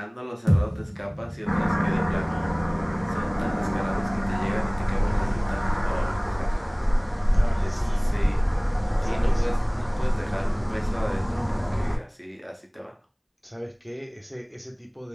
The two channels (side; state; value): both; identical; correlation 1.00